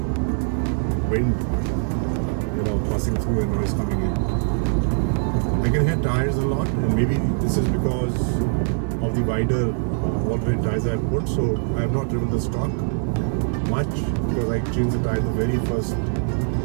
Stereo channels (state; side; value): silent; left; 64 dB below the other